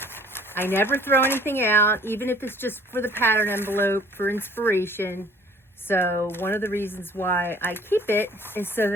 I never throw anything out, even if it's just for the pattern envelope for inspiration. So one of the reasons why I keep it is so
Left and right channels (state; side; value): normal; both; correlation 0.54